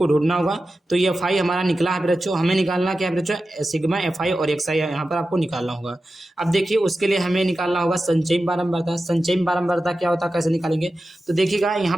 ढूंढना होगा। तो ये एफ आई हमारा निकला है बच्चों, हमें निकालना क्या है बच्चों? सिग्मा एफ आई और एक्स आई यहाँ पर आपको निकालना होगा। अब देखिए उसके लिए हमें निकालना होगा संचयी बारंबारता। संचयी बारंबारता क्या होता है, कैसे निकालेंगे? तो देखिएगा यहाँ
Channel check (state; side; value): normal; both; correlation 0.93